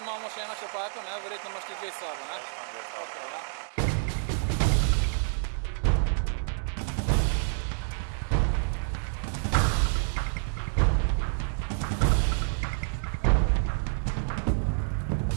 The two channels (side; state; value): left; silent; digital silence